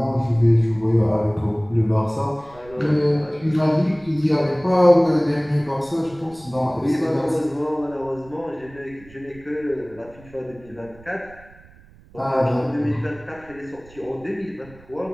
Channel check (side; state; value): right; noise; rumble, 23 dB below the sound